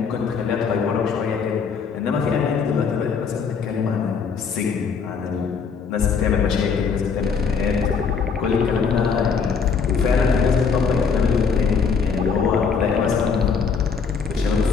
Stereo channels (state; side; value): quieter; right; 5.7 dB